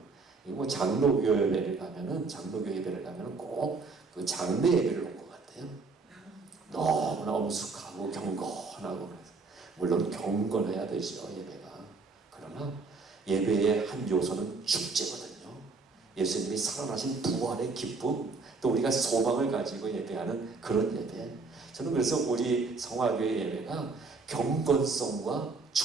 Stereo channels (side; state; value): left; quieter; 4.1 dB